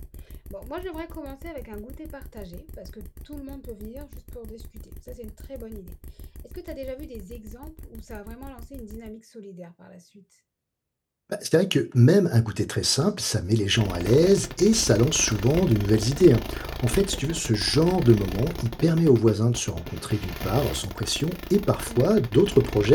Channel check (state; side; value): identical; both; correlation 1.00